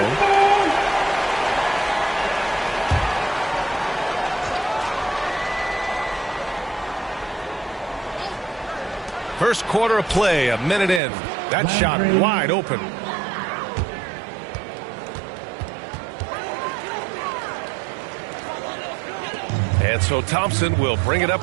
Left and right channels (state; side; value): drops out; left; at 11.0 s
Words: First quarter of play, a minute in. That shot wide open. And so Thompson will bring it up